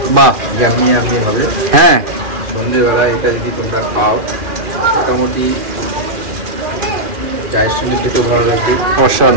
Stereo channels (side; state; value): left; late; 2.4 ms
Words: বাহ, ইয়ামি হবে। হ্যাঁ, সন্ধ্যেবেলা এটা যদি তোমরা খাও মোটামুটি চায়ের সঙ্গে খেতেও ভালো লাগবে,